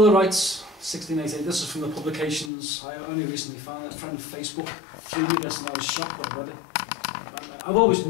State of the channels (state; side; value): drops out; right; at 2.5 s